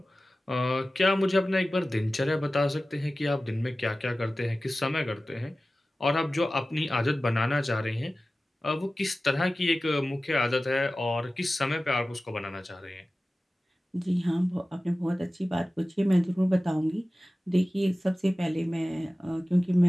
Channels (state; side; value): normal; both; correlation 0.96